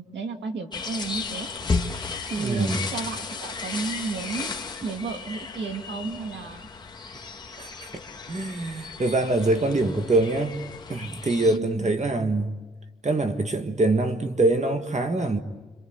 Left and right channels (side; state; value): both; normal; correlation 0.58